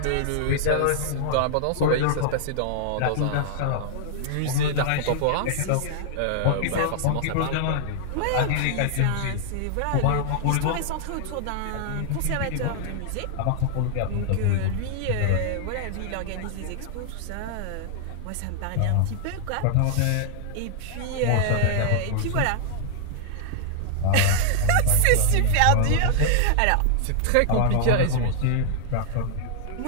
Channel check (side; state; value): both; different; correlation -0.01